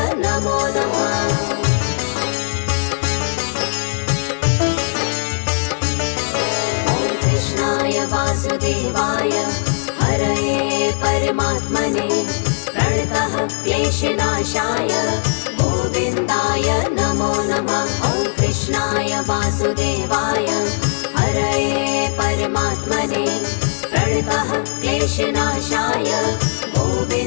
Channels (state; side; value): silent; right; digital silence